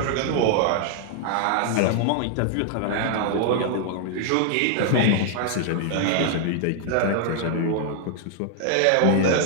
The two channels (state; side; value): different; both; correlation 0.00